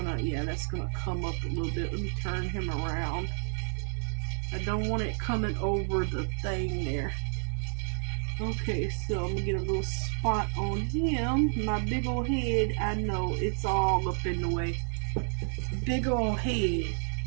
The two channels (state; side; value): silent; left; 58 dB below the other